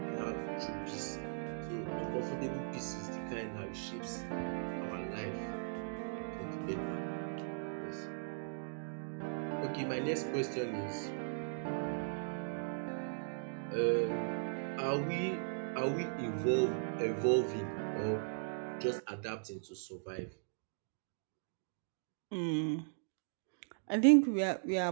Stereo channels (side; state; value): left; silent; digital silence